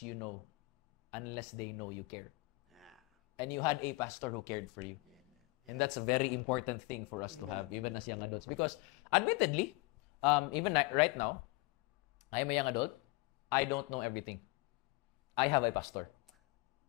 you know unless they know you care. And you had a pastor who cared for you. And that's a very important thing for us to have, even as young adults. Because admittedly, even right now, I'm a young adult. I don't know everything. I have a pastor.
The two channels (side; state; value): right; quieter; 24.8 dB